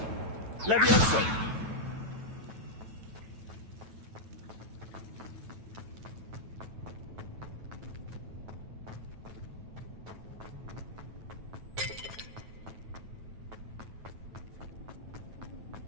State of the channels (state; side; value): late; left; 9.1 ms